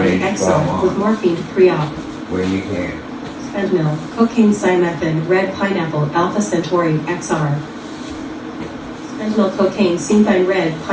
Vicotin, age 12 XR with on morphine pre-op. when you can. Fentanyl, cocaine, Ciamethine, red pineapple, alpha centauri, XR. Fentanyl, cocaine, Ciamethine, red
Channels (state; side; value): identical; both; correlation 1.00